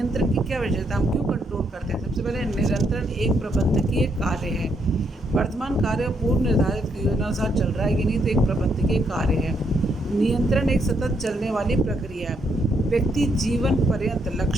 की क्या विशेषता, हम क्यों कंट्रोल करते हैं? सबसे पहले नियंत्रण एक प्रबंधकीय कार्य है। वर्तमान कार्य पूर्व निर्धारित योजना अनुसार चल रहा है कि नहीं, तो एक प्रबंधकीय कार्य है। नियंत्रण एक सतत चलने वाली प्रक्रिया है। व्यक्ति जीवन पर्यंत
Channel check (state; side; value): normal; both; correlation 0.75